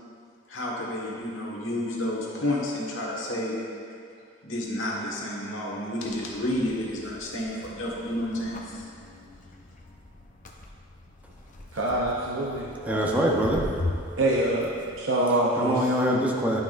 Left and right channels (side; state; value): both; normal; correlation 0.39